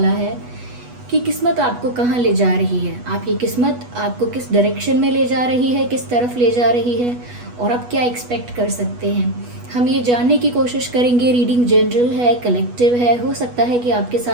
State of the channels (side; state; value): left; late; 8.2 ms